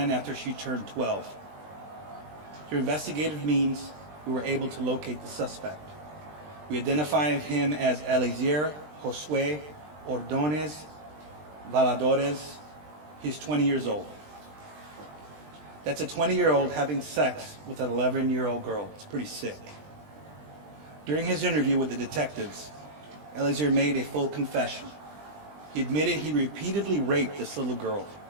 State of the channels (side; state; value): left; late; 20 ms